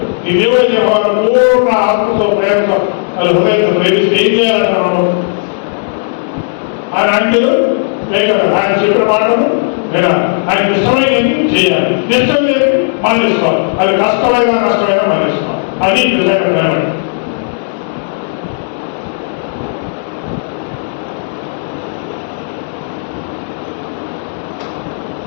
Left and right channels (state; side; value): silent; right; digital silence